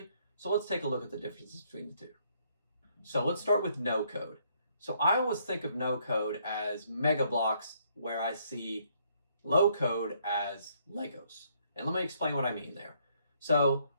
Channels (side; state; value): both; inverted; correlation -0.69